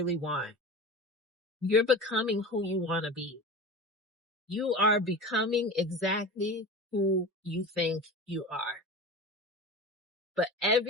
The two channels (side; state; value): both; normal; correlation 0.31